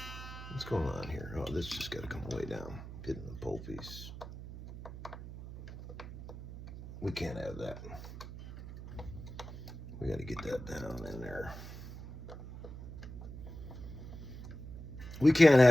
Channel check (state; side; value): noise; right; hum, 11 dB below the sound